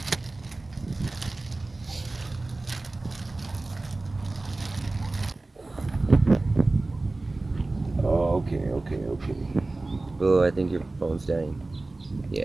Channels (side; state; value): left; quieter; 3.1 dB